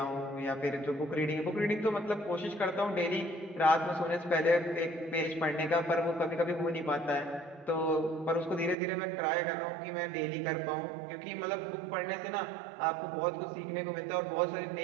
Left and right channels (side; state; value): left; drops out; at 8.8 s